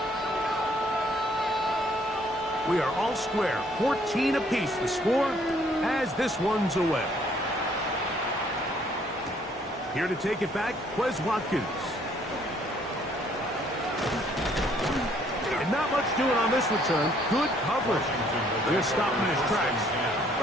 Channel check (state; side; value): normal; both; correlation 0.64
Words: We are all square, 14 apiece the score as this one's away. Here to take it back, Quez Watkins. And not much doing on this return. Good coverage. They're stopping in his tracks